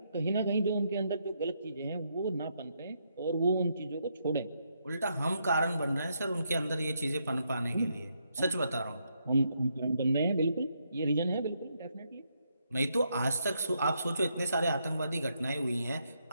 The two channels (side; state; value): both; inverted; correlation -0.78